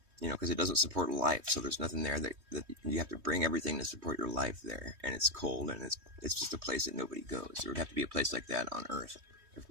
because it doesn't support life. So there's nothing there that you have to bring everything to support your life there. And it's cold and it's just a place that nobody goes. There would have to be a place like that on Earth if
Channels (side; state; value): left; late; 3.2 ms